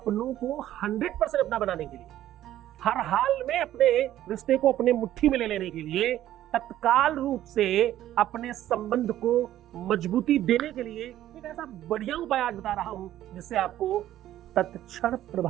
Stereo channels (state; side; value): quieter; left; 13.0 dB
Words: को 100% अपना बनाने के लिए, हर हाल में अपने रिश्ते को अपने मुट्ठी में ले लेने के लिए, तत्काल रूप से अपने संबंध को मजबूती देने के लिए एक ऐसा बढ़िया उपाय आज बता रहा हूं जिससे आपको तत्क्षण